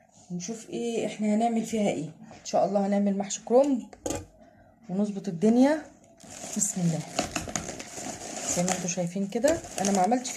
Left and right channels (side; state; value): both; identical; correlation 1.00